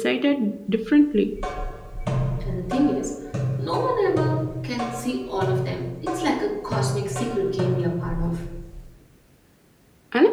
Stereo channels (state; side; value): identical; both; correlation 1.00